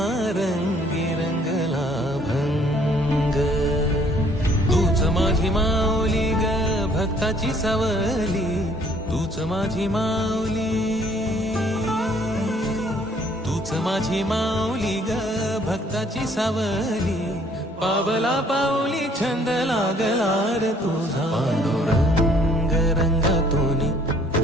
रंगी रंगला भंग तूच माझी माऊली ग भक्ताची सावली तूच माझी माऊली तूच माझी माऊली ग भक्ताची सावली पावला पाऊली छंद लागला रे तुझा पांडुरंग रंगातुनी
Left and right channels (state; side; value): normal; both; correlation 0.61